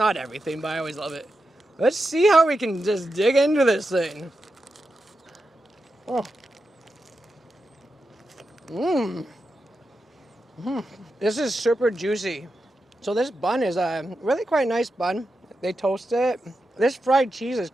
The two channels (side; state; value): both; normal; correlation 0.88